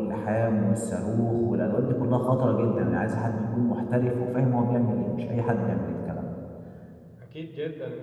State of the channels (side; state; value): both; identical; correlation 1.00